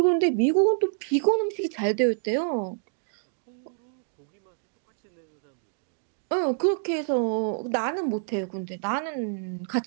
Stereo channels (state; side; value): silent; left; digital silence